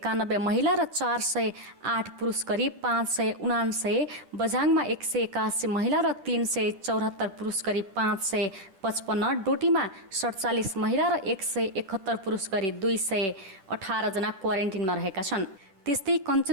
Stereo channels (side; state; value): left; late; 10 ms